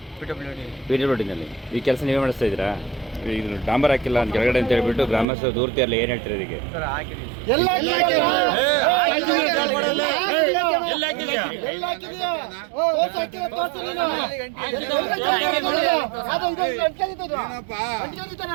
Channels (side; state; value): left; drops out; at 5.2 s